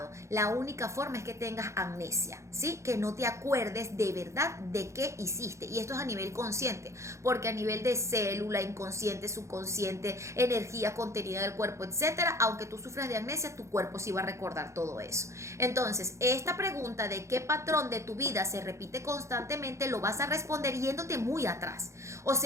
La única forma es que tengas amnesia, ¿sí? Que no te acuerdes de verdad de qué hiciste. Y esto es a nivel consciente, porque a nivel de célula, inconsciente, subconsciente, energía contenida del cuerpo, etcétera, aunque tú sufras de amnesia, tu cuerpo sí va a recordar todo eso. Entonces, esta pregunta de qué patrón de tu vida se repite constantemente lo vas a responder yéndote muy atrás. O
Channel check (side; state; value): left; late; 0.14 ms